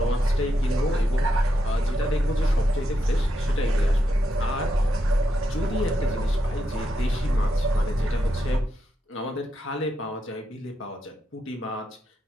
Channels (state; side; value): normal; both; correlation 0.83